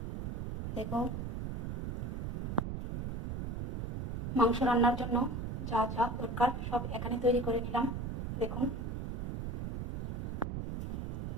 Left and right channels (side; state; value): right; noise; rumble, 4 dB below the sound